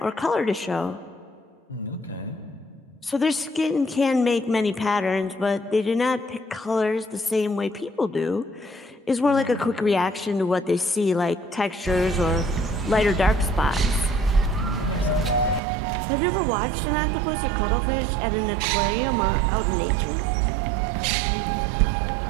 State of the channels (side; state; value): left; drops out; at 15.6 s